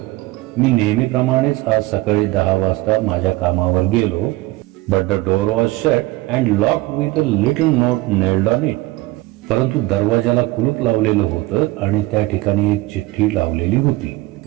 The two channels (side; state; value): left; quieter; 19.4 dB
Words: मी नेहमीप्रमाणेच आज सकाळी 10 वाजता माझ्या कामावर गेलो. But the door was shut and locked with a little note nailed on it. परंतु दरवाजाला कुलूप लावलेलं होतं आणि त्या ठिकाणी एक चिठ्ठी लावलेली होती.